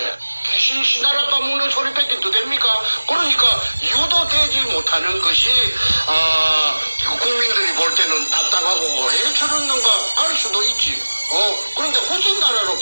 귀신 씨나라 까먹는 소리밖에 더 됩니까? 그러니까 유도되지 못하는 것이 국민들이 볼 때는 답답하고 왜 저러는가 할 수도 있지. 그런데 후진나라로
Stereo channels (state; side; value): inverted; both; correlation -1.00